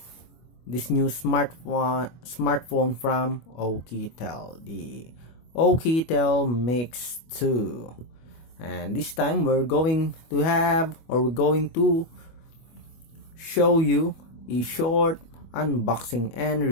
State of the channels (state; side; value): late; right; 25 ms